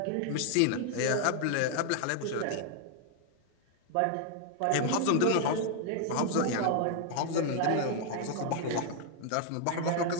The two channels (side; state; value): both; different; correlation 0.00